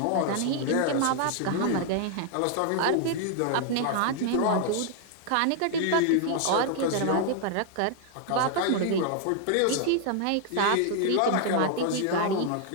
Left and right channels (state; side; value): different; both; correlation 0.00